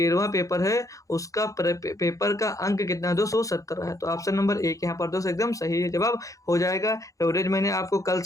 पेपर है उसका पेपर का अंक कितना है दोस्तों 17 है, तो ऑप्शन नंबर 1 यहाँ पर दोस्त एकदम सही है जवाब हो जाएगा। एवरेज मैंने आपको कल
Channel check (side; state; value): right; late; 0.16 ms